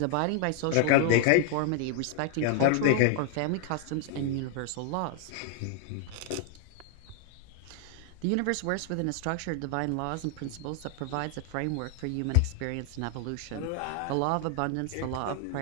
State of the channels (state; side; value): different; both; correlation 0.00